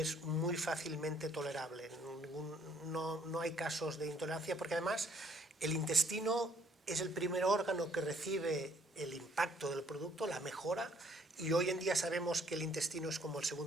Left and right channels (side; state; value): both; normal; correlation 0.64